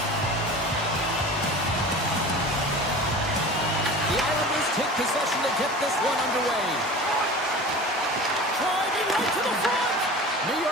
The Islanders take possession to get this one underway. Driving right to the front. New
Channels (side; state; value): both; normal; correlation 0.37